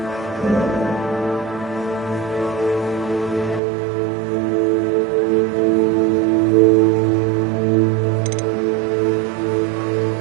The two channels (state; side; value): drops out; left; at 3.6 s